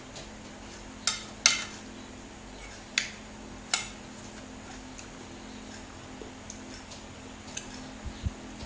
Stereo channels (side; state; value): both; identical; correlation 1.00